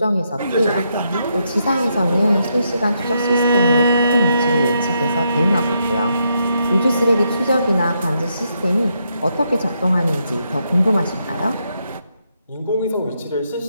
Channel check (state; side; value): inverted; both; correlation -0.79